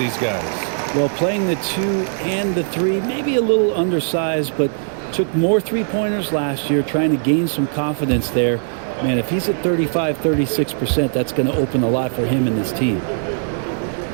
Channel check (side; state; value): left; silent; digital silence